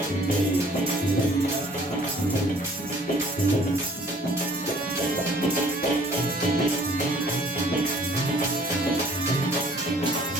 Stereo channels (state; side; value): normal; both; correlation 0.55